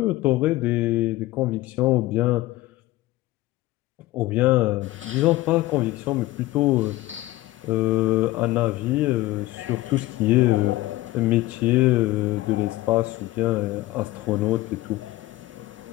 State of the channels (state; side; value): quieter; right; 17.7 dB